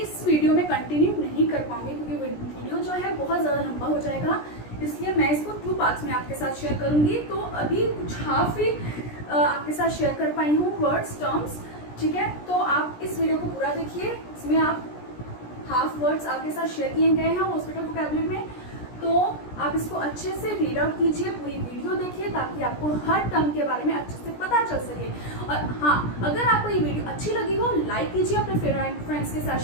वीडियो में कंटिन्यू नहीं कर पाऊंगी क्योंकि वीडियो जो है बहुत ज़्यादा लंबा हो जाएगा, इसलिए मैं इसको 2 पार्ट्स में आपके साथ शेयर करूंगी। तो अभी कुछ हाफ ही आपके साथ शेयर कर पाई हूँ वर्ड्स टर्म्स, ठीक है। तो आप इस वीडियो को पूरा देखिए, इसमें आप हाफ वर्ड्स आपके साथ शेयर किए गए हैं हॉस्पिटल वोकैबुलरी में, तो आप इसको अच्छे से रीड आउट कीजिए, पूरी वीडियो देखिए ताकि आपको हर टर्म के बारे में अच्छे से पता चल सके। और हाँ, अगर आपको ये वीडियो अच्छी लगी हो लाइक कीजिए, अपने फ्रेंड्स के साथ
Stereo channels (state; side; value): late; right; 17 ms